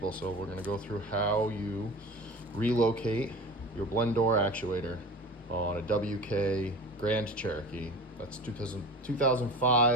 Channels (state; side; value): normal; both; correlation 0.36